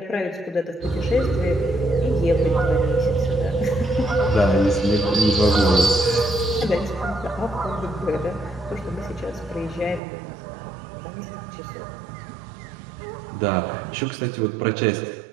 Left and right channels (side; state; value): left; drops out; at 10.0 s